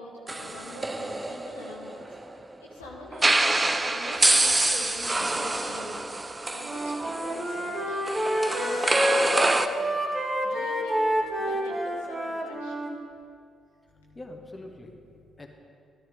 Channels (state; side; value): normal; both; correlation 0.92